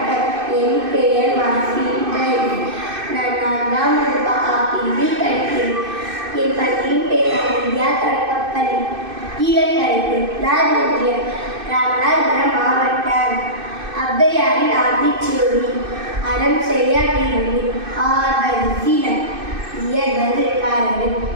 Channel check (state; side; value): late; left; 2.6 ms